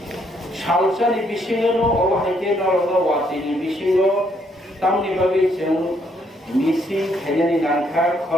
सालसानि बिसिङाव अबहायके नरग वासिनि बिसिङाव तामनि बागै जों मिसिं खायनायनि नाखा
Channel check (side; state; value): both; normal; correlation 0.71